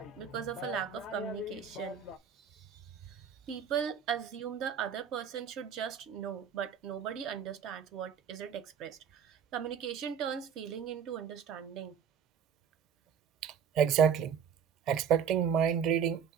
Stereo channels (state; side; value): quieter; left; 7.6 dB